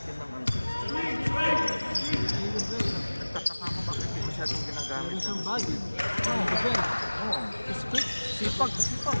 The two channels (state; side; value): inverted; both; correlation -1.00